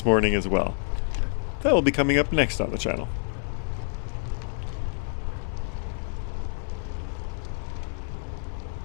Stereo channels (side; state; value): right; silent; 60 dB below the other